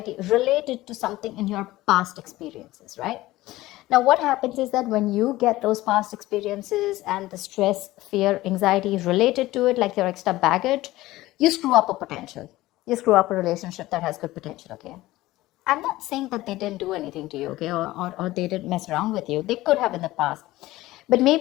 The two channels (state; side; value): quieter; right; 17.4 dB